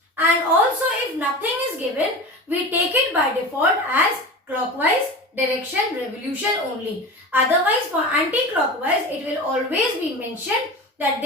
And also if nothing is given, we take it by default as clockwise direction revolution only. Otherwise for anti-clockwise, it will always be mentioned that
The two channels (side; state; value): both; normal; correlation 0.30